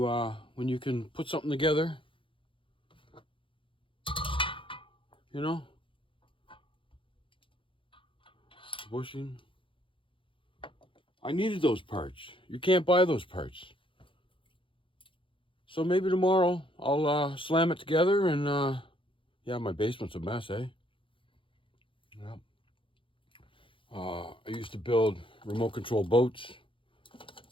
can put something together. You know, bushing, I needed those parts. You can't buy those parts. So maybe tomorrow I'll slam it together and yeah, my basement's a mess, eh? Yeah. I used to build remote control boats,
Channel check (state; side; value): late; right; 0.25 ms